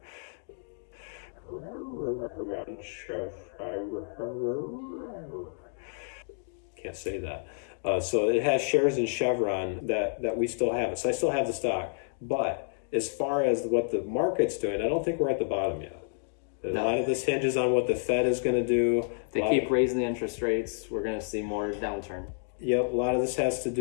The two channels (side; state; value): right; silent; digital silence